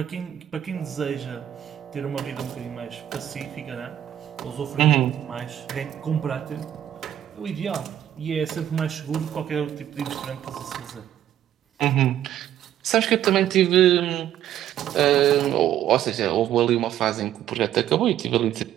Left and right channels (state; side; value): quieter; left; 11.3 dB